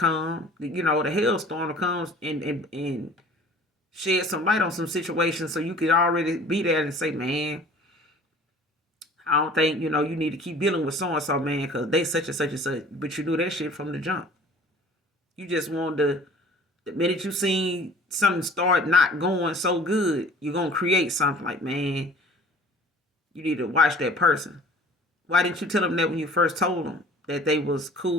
the hailstorm to come and shed some light on some situations so you could already be there and say, man, I don't think, you need to keep dealing with so-and-so, man, because they such and such and such. But you knew that shit from the jump. You just wanted to, the minute you seen something start not going so good, you're going to create something like, man, you need to watch that person. Why didn't you tell them that when you first told them that they was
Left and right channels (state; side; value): normal; both; correlation 0.47